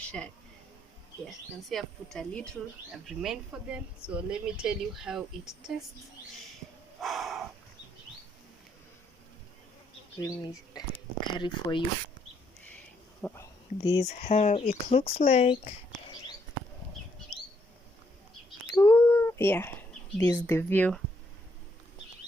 Yeah, you can see I've put a little, I've remained for them. So let me tell you how it tastes. Let me carry for you. This is how it looks like. Ooh, yeah, this is the view.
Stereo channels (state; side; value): normal; both; correlation 0.73